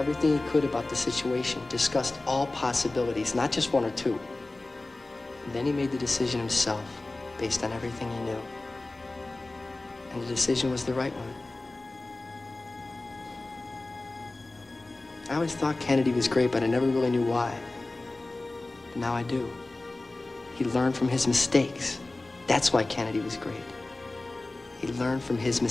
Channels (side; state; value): right; quieter; 3.0 dB